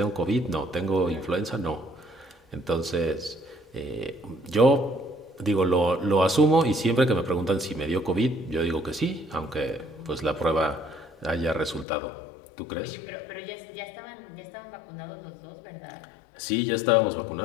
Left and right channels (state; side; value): drops out; right; at 11.9 s